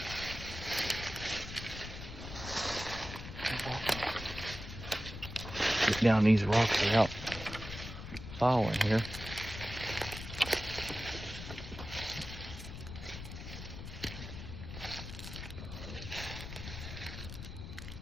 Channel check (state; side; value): noise; left; rumble, 9 dB below the sound